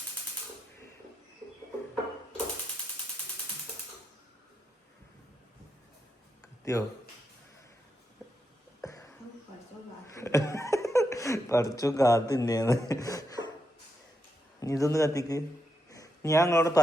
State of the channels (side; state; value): both; normal; correlation 0.83